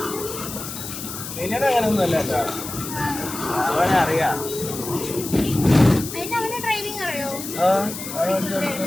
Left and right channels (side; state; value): left; noise; hiss, 9 dB below the sound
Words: പിന്നീട് അങ്ങനെയൊന്നും അല്ല കേട്ടോ, അവനെ അറിയാം.